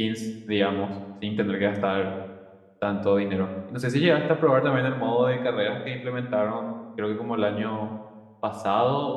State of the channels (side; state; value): both; identical; correlation 1.00